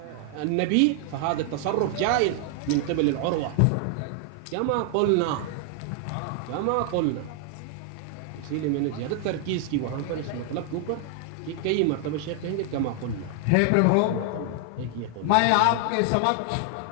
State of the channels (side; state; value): both; different; correlation 0.00